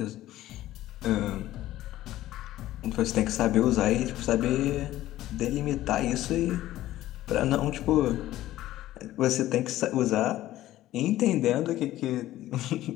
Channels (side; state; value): right; quieter; 14.7 dB